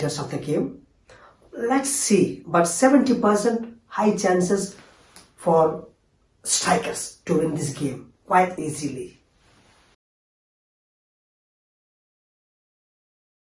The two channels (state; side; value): identical; both; correlation 1.00